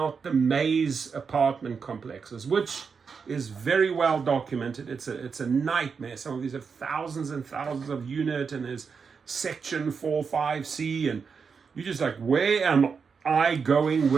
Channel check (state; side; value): quieter; left; 5.7 dB